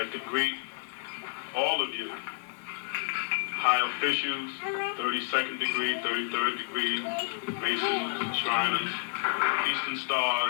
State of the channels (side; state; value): right; silent; digital silence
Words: like to greet all of you, high officials, 32nd degree, 33rd degree, Masons, Shriners, Eastern